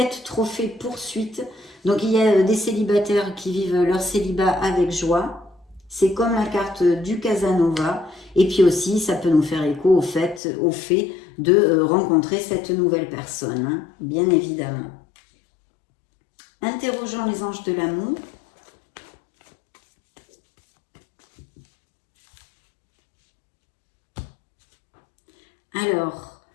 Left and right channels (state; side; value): drops out; right; at 10.4 s